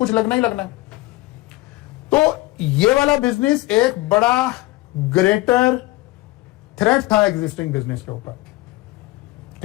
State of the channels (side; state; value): right; quieter; 19.3 dB